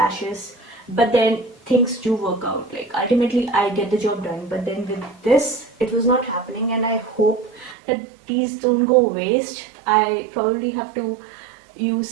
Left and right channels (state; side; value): drops out; left; at 7.8 s